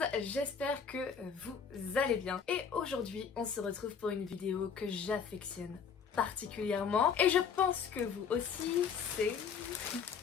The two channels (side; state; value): right; quieter; 6.6 dB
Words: j'espère que vous allez bien. Et aujourd'hui, on se retrouve pour une vidéo que j'affectionne particulièrement. Et je pense que vous aussi, c'est...